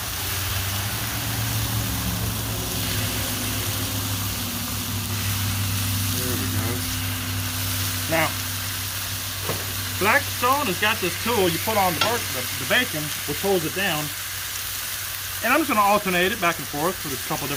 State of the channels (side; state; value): both; identical; correlation 1.00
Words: Now, Blackstone has got this tool you put on the bacon, which holds it down. And I'm just going to alternate it back and forth with a couple